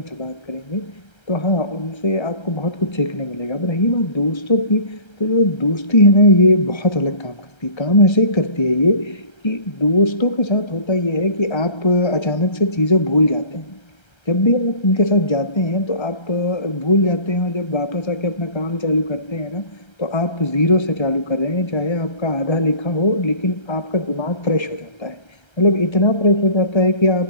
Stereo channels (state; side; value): late; right; 1.3 ms